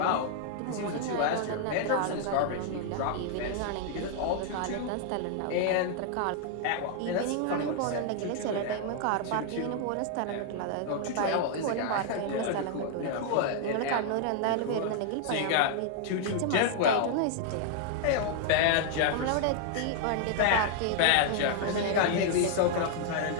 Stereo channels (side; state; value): both; different; correlation 0.00